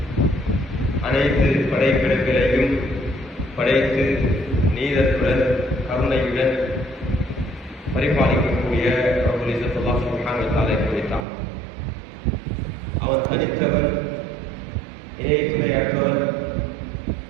அனைத்து படைப்பிடங்களையும் படைத்து நீதத்துடன் கருணையுடன் பரிபாலிக்கக்கூடிய ரப்புல் இஸ்ஸத் அல்லாஹ் சுப்ஹானஹு வ தஆலா குறித்தான். அவன் தனித்தவன், இணை துணையற்றவன்,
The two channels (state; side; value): drops out; left; at 11.2 s